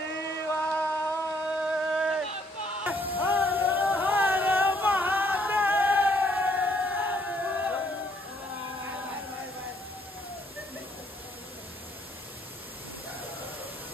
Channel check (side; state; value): both; normal; correlation 0.68